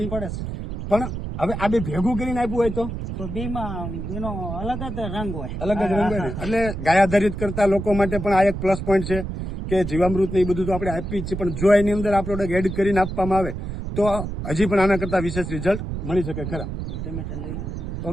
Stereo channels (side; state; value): right; noise; rumble, 6 dB below the sound